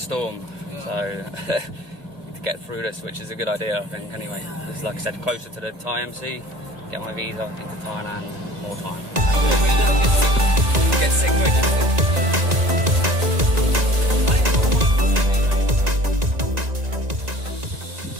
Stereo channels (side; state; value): left; late; 1.9 ms